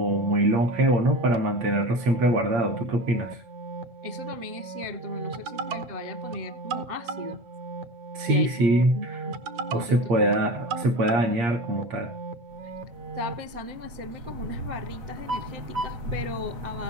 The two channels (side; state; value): left; late; 8.6 ms